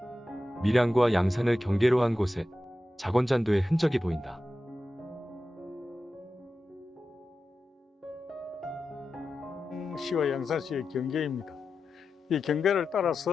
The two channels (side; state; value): both; normal; correlation 0.92